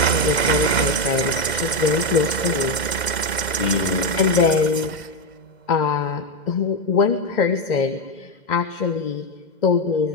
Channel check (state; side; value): late; right; 2.0 ms